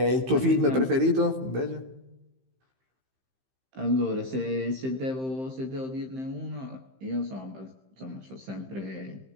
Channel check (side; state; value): left; late; 15 ms